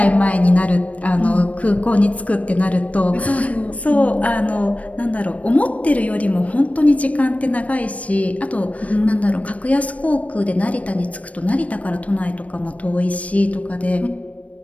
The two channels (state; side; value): late; right; 0.066 ms